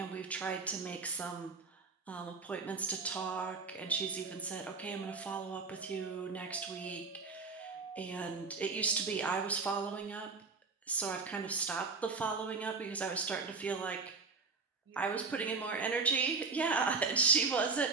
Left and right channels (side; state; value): left; quieter; 4.4 dB